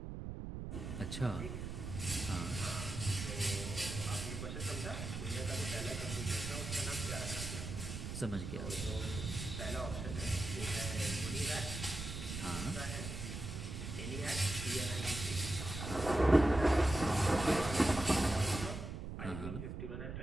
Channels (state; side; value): noise; right; rumble, 6 dB below the sound